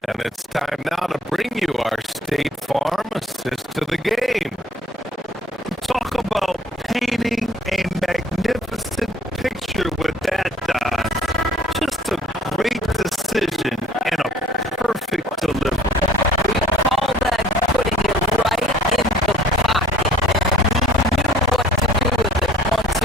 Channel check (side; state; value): both; normal; correlation 0.54